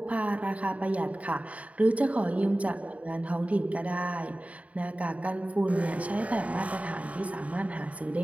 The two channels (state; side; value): late; left; 0.068 ms